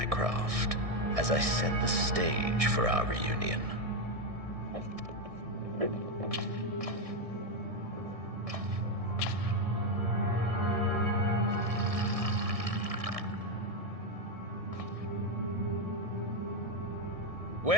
craft as I set the stage for our reunion.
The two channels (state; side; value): late; left; 1.6 ms